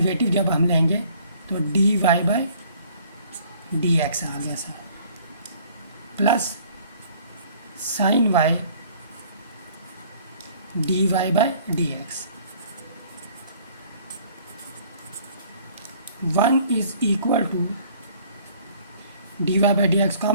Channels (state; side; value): inverted; both; correlation -0.56